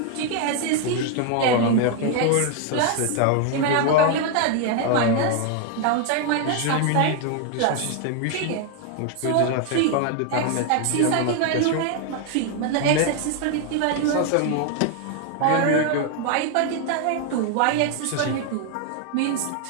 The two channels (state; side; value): different; both; correlation 0.01